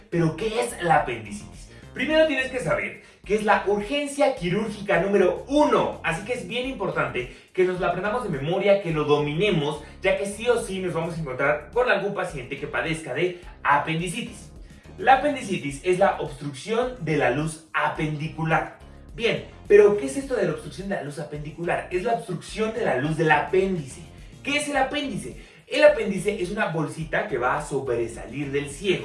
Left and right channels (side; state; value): both; identical; correlation 1.00